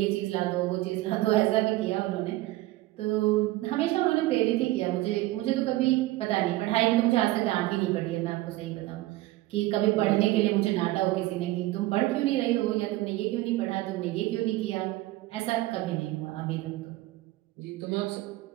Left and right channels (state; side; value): quieter; left; 17.7 dB